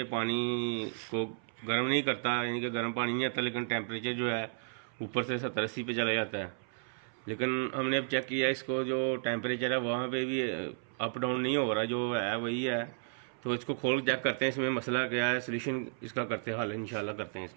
पानी को गर्म नहीं करता, यानी कि गर्म पानी नहीं आता, लेकिन टेम्परेचर जो है ऊपर से 70-80 पे चला जाता है। लेकिन हमने अब चेक किया इसको, जो टेम्परेचर है वहाँ पे भी अप डाउन नहीं हो रहा, जो है वही है। तो इसको खोल चेक करते हैं इसमें मसला क्या है, सोल्यूशन इसका करते हैं, हल इंशाल्लाह करते हैं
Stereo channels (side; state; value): left; silent; 56 dB below the other